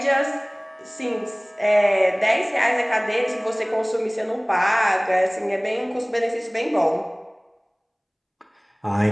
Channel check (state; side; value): identical; both; correlation 1.00